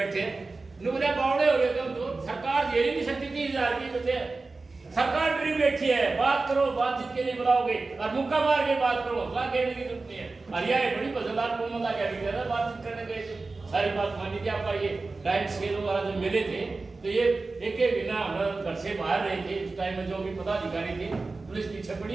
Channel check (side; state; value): left; quieter; 3.7 dB